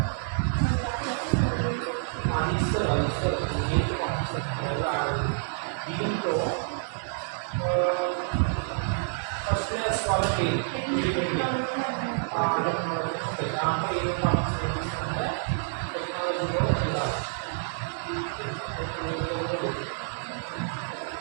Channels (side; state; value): left; silent; digital silence